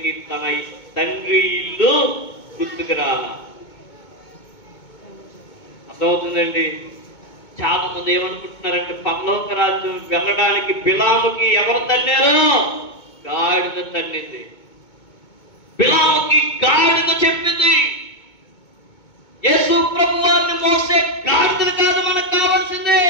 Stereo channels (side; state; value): right; late; 2.2 ms